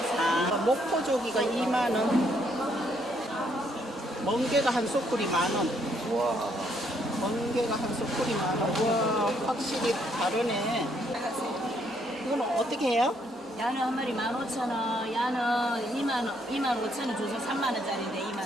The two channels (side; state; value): both; normal; correlation 0.71